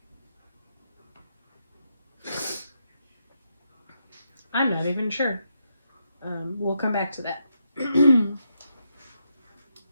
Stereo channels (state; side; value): inverted; both; correlation -0.82